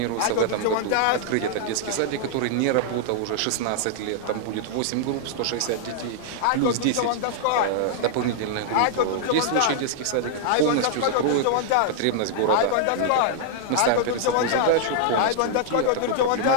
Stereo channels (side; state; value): both; different; correlation -0.01